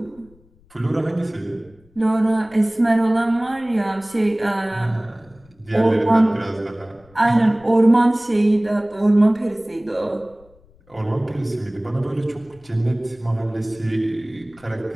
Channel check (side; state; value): left; noise; rumble, 29 dB below the sound